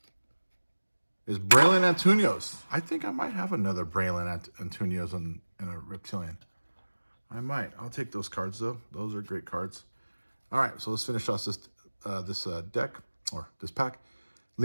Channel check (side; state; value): both; inverted; correlation -1.00